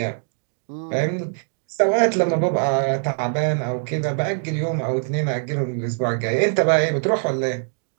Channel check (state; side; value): silent; left; digital silence